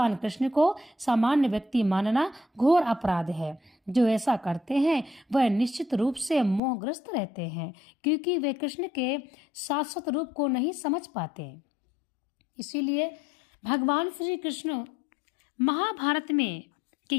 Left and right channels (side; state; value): right; drops out; at 6.6 s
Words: कृष्ण को सामान्य व्यक्ति मानना घोर अपराध है। जो ऐसा करते हैं वह निश्चित रूप से मोहग्रस्त रहते हैं, क्योंकि वे कृष्ण के शाश्वत रूप को नहीं समझ पाते। इसीलिए भगवान श्री कृष्ण महाभारत में के